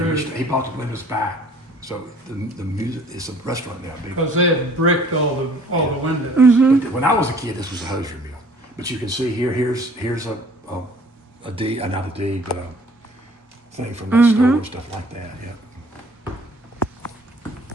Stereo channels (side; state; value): both; normal; correlation 0.54